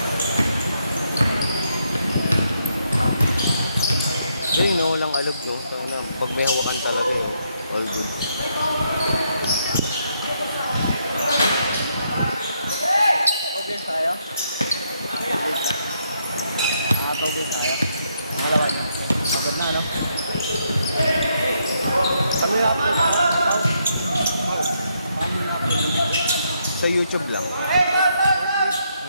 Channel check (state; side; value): inverted; both; correlation -0.76